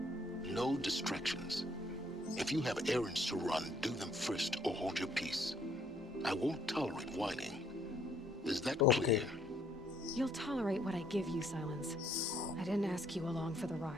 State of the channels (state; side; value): normal; both; correlation 0.66